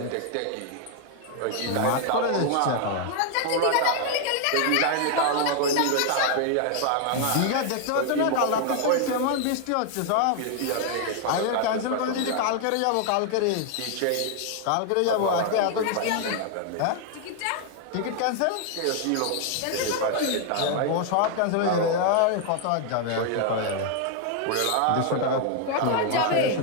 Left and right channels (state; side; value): different; both; correlation 0.00